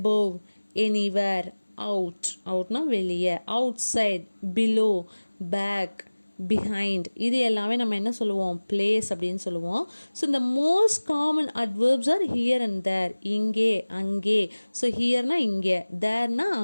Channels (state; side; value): inverted; both; correlation -1.00